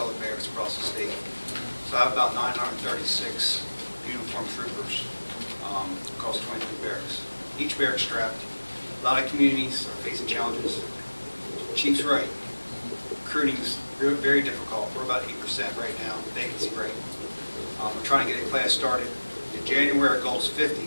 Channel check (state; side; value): inverted; both; correlation -1.00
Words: the barracks across the state. So I have about 936 uniformed troopers across 23 barracks. Each barrack strapped. A lot of communities are facing challenges. Chief's right. Recruiting is very difficult. We're about 8% right now, vacancy rate. We're trying to get a class started. In January, our goal is 50.